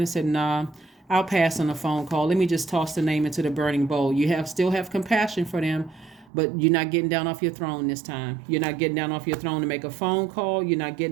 said, nah, I'll pass on a phone call. Let me just toss the name into the burning bowl. You still have compassion for them, but you're not getting down off your throne this time. You're not getting down off your throne to make a phone call. You're not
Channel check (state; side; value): drops out; left; at 6.3 s